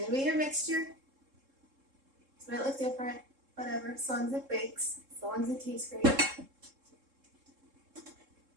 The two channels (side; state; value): left; late; 3.7 ms